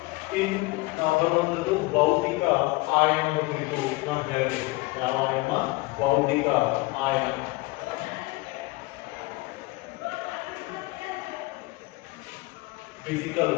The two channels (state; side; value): quieter; right; 22.4 dB